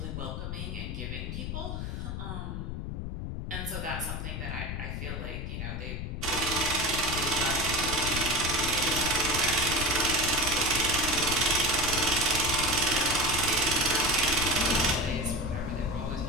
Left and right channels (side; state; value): left; noise; rumble, 5 dB below the sound